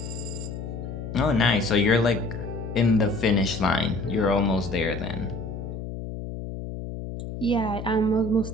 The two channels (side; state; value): left; noise; hum, 8 dB below the sound